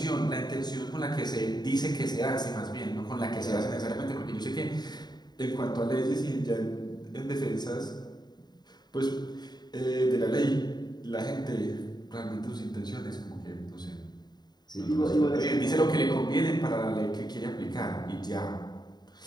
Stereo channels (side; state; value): right; late; 0.20 ms